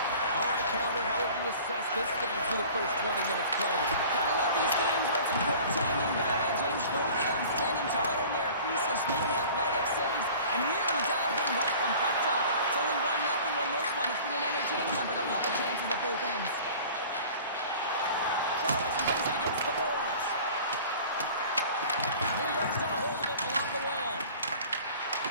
All right, Pounder, how would you assess this game through the first 20 minutes played? Gotta love these games where it's a goaltending battle, James. Both of them standing tall in their creases, making athletic saves, and really dialed in right from puck drop. It's only 1-0 in this one. It's been an entertaining one, but a lot of chances at both ends. Charles plays it against the boards. New York's got a hold of it along the wall.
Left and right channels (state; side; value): inverted; both; correlation -0.44